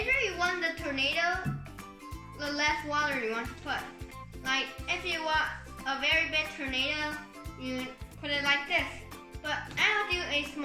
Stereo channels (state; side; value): identical; both; correlation 1.00